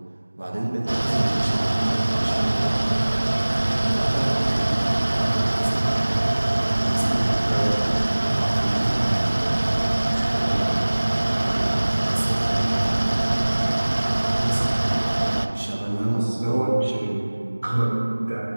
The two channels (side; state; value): both; inverted; correlation -1.00